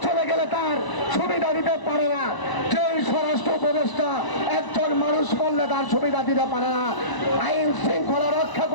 চলে গেলে তার সুবিধা দিতে পারে না, যেই স্বরাষ্ট্র উপদেষ্টা একজন মানুষ করলে তার সুবিধা দিতে পারে না, আইন শৃঙ্খলা রক্ষা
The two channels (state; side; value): late; right; 1.0 ms